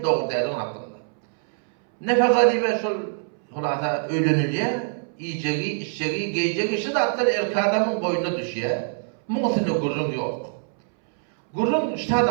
Doğru değerli hakkında. Nefaka diye şol hulasa ölünülüyor, yiyeceği, içeceği, giyeceği işi de hatta erkek adamın boynuna düşüyor. Muhtemelen gurrun yok. Gurrun işte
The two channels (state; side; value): silent; left; 63 dB below the other